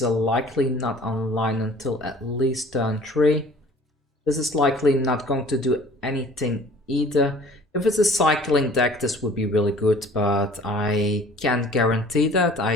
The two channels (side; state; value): both; normal; correlation 0.50